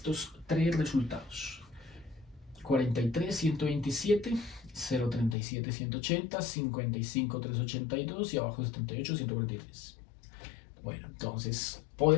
tres resultados: 43, 127, 037, 180, 55, 382 y abajo 78, 143. Bueno, entonces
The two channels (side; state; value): right; drops out; at 5.4 s